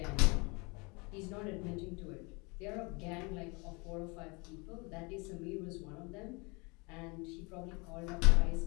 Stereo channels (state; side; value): quieter; right; 28.8 dB